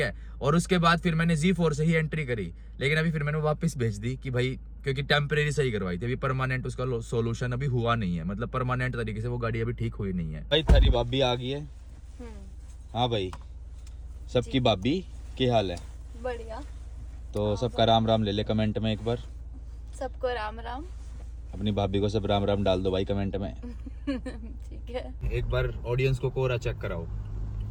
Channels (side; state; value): both; identical; correlation 1.00